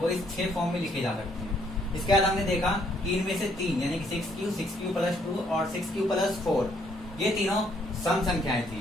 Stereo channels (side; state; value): both; normal; correlation 0.68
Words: इस 6 फॉर्म में लिखे जा सकते हैं। इसके बाद हमने देखा कि इनमें से 3 यानी कि 6q प्लस 2 और 6q प्लस 4 ये तीनों सम संख्याएं